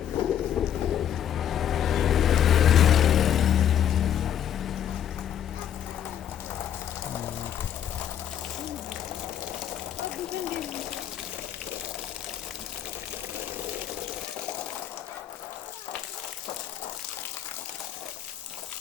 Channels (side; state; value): right; quieter; 9.8 dB